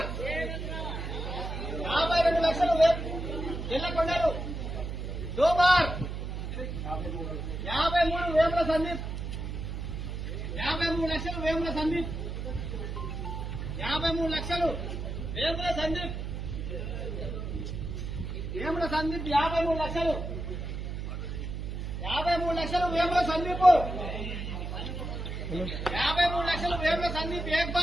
52 లక్షలు జల్లకొండలు దో బార్ 53 వేముల సందీప్ 53 లక్షలు వేముల సందీప్ 53 లక్షలు వేముల సందీప్ 53 లక్షలు 53 లక్షలు వేముల సందీప్ 53 లక్షలు వేముల సందీప్ ఏక్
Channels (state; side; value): noise; right; hum, 5 dB below the sound